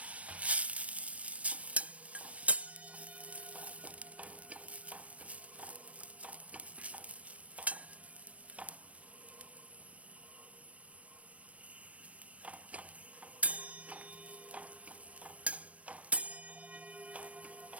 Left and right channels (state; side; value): late; left; 0.065 ms